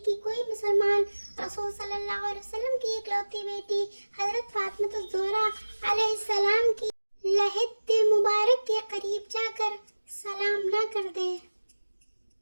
कोई मुसलमान रसूल सल्लल्लाहु अलैहि वसल्लम की इकलौती बेटी हजरत फातिमा ज़ोहरा अलैहिस्सलाम की लहद मुबारक के करीब जाकर सलाम न कर दे।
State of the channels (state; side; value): inverted; both; correlation -1.00